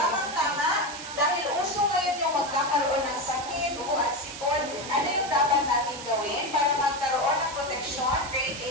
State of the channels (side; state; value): right; noise; hiss, 10 dB below the sound